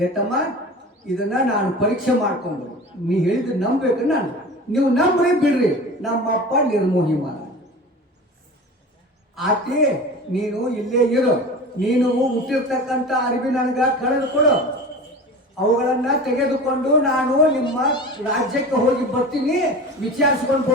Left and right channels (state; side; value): normal; both; correlation 0.35